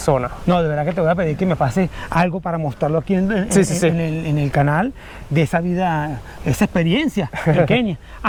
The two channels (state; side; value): identical; both; correlation 1.00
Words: No, de verdad que te voy a pedir que me pase algo para mostrarlo aquí Sí, sí, sí. en el canal de esa vida, esa experiencia en Kenia.